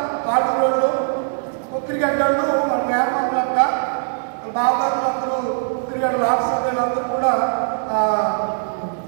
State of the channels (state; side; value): silent; left; digital silence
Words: తాడుగోళ్ళు, ఒక్కిరిగడ్డలు, వాళ్ళ వేమలంట, బావగారు అందరూ, ఒక్కిరిగడ్డలు, ఆడసభ్యులు అందరూ కూడా